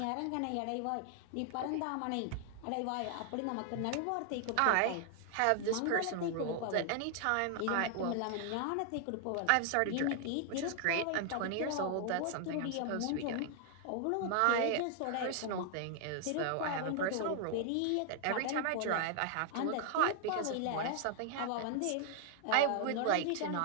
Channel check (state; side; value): different; both; correlation 0.00